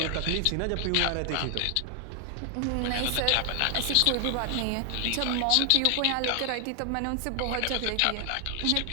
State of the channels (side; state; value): both; different; correlation 0.00